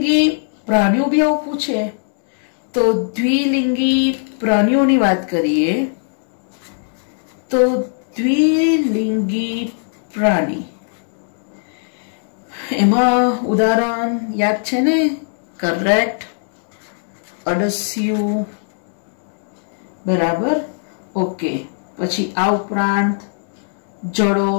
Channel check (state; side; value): silent; right; digital silence